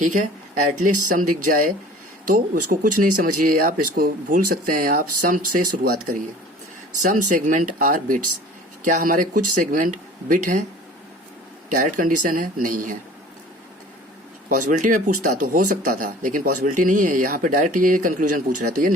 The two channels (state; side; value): normal; both; correlation 0.46